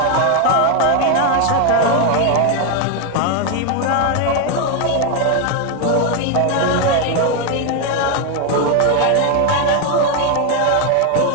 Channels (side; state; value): both; different; correlation 0.01